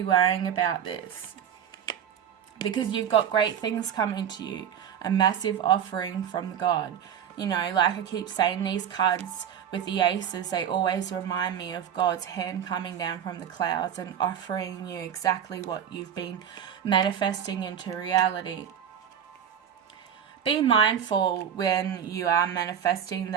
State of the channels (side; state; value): left; quieter; 8.7 dB